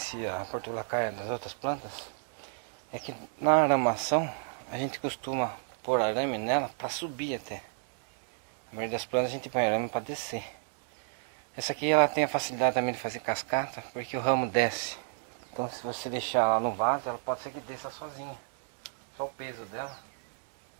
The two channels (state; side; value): silent; left; 57 dB below the other